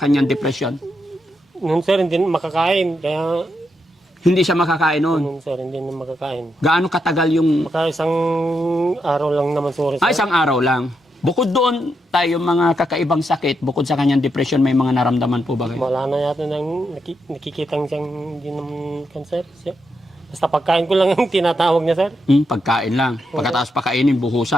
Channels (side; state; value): both; normal; correlation 0.83